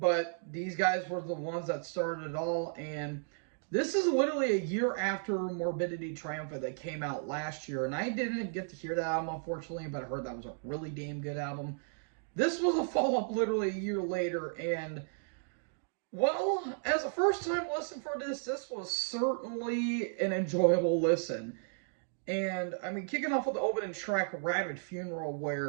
these guys were the ones that started it all, and this is literally a year after Morbidity Triumphant that came out last year, and I didn't get to hear that album unfortunately, but I heard that was a really damn good album. This was a follow up literally a year later, and well, as a first time listen for this was certainly an enjoyable listen. And I mean, kicking off with the opening track, Rabid Funeral,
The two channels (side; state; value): left; silent; digital silence